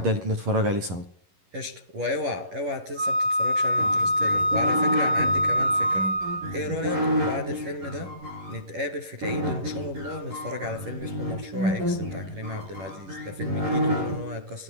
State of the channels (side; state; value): left; late; 11 ms